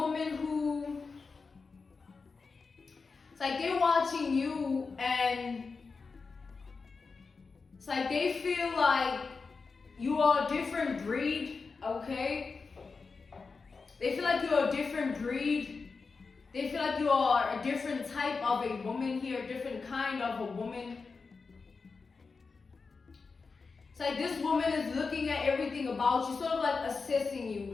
who, it's like they're watching you and it's like they feel like you are a different breed, okay? They feel like you're a different breed. They feel like you are a different type of a woman here, a different kind of a woman. It's like this woman is looking at everything about you, sort of like assessing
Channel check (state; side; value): quieter; right; 4.6 dB